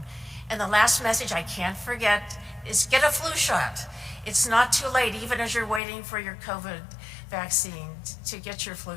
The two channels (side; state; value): right; drops out; at 5.8 s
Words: And the last message I can't forget is get a flu shot. It's not too late, even as you're waiting for your COVID vaccine, to get your